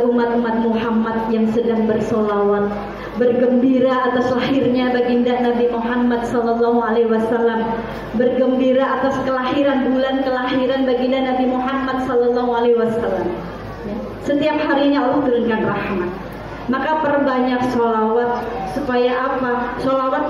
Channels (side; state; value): both; identical; correlation 1.00